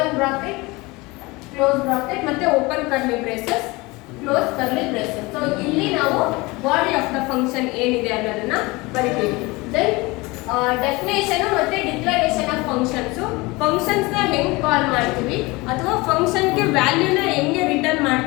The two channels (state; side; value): quieter; right; 23.4 dB